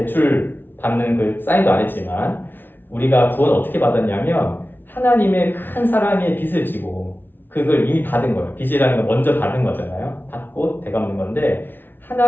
받는 그 사인도 안 했지만 우리가 구원 어떻게 받았냐면 하나님의 큰 사랑의 빚을 지고 그걸 이미 받은 거예요. 빚이라는 건 먼저 받은 거잖아요. 받고 되갚는 건데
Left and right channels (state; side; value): late; right; 0.098 ms